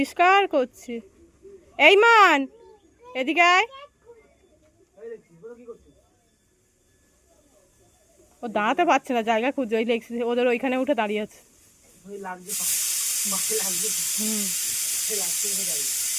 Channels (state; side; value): identical; both; correlation 1.00